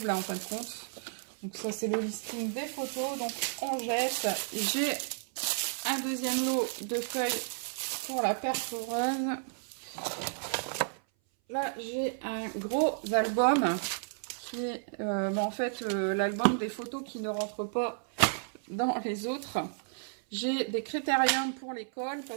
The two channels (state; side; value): silent; left; 56 dB below the other